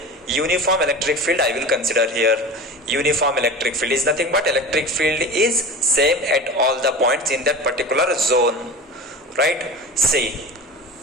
uniform electric field I will consider here. Uniform electric field is nothing but electric field is same at all the points in that particular zone, right? See,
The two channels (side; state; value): both; normal; correlation 0.33